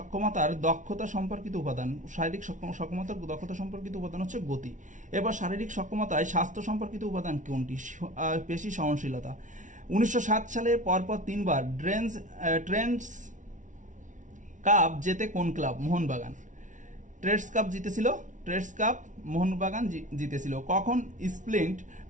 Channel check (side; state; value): left; late; 0.37 ms